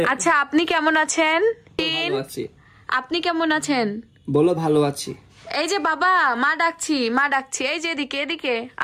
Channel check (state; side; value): identical; both; correlation 1.00